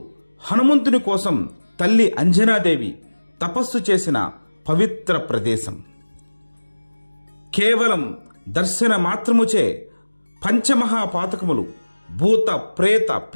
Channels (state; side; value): inverted; both; correlation -1.00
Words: హనుమంతుని కోసం తల్లి అంజనాదేవి తపస్సు చేసిన పవిత్ర ప్రదేశం. కేవలం దర్శన మాత్రముచే పంచమహాపాతకములు, భూత ప్రేత